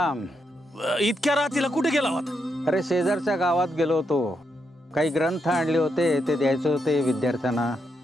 इतक्या रात्रीला कुठे गेला होता? अरे शेजारच्या गावात गेलो होतो. काही ग्रंथ आणले होते ते द्यायचे होते विद्यार्थ्यांना.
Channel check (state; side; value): normal; both; correlation 0.81